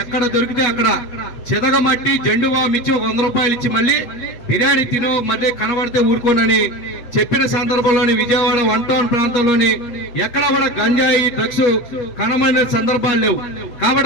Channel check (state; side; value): late; right; 7.9 ms